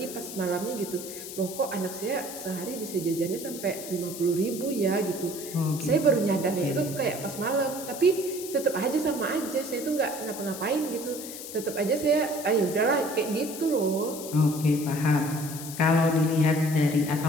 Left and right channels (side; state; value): left; noise; hiss, 11 dB below the sound